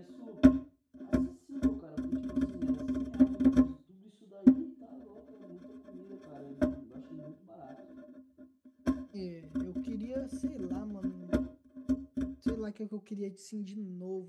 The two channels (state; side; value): identical; both; correlation 1.00